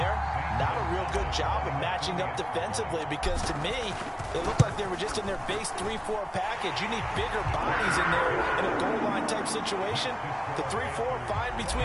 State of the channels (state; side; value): identical; both; correlation 1.00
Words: not a real good job of matching up defensively because to me, it looked like they were just in their base 3-4 package. You need bigger bodies in there in a goal line type situation. The 3-4 fine